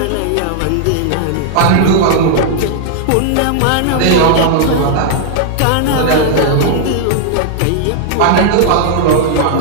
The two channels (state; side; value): different; both; correlation -0.01